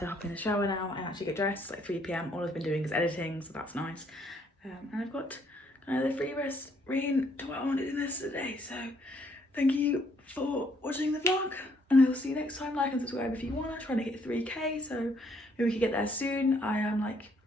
hop in the shower now and actually get dressed. It's like 3 PM. All I've been doing is editing, so that's nice. And I've got kind of the free rest rein to what I wanted in this today. So thank you for watching the vlog, and I will see you next time. Like and subscribe if you want. I'm trying to hit 3K, so maybe we can get there soon. I am like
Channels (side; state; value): both; normal; correlation 0.68